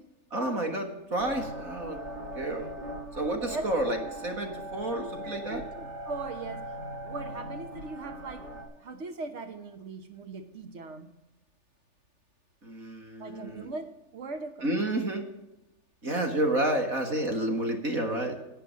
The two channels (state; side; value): late; left; 3.4 ms